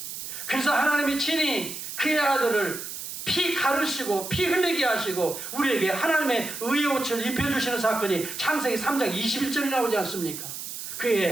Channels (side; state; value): right; noise; hiss, 8 dB below the sound